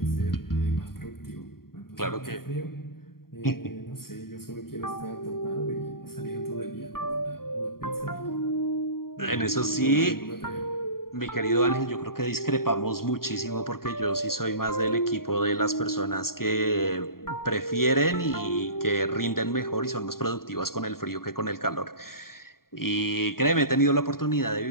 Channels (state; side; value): late; right; 0.93 ms